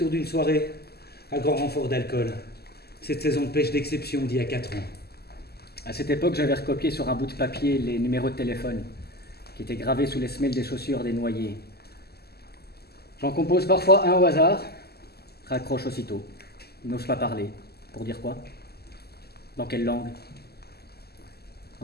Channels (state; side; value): late; right; 0.46 ms